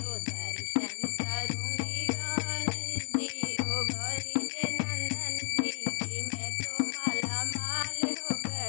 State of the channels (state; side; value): silent; right; digital silence